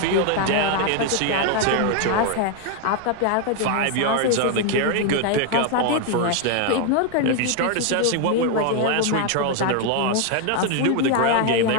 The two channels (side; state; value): both; different; correlation 0.01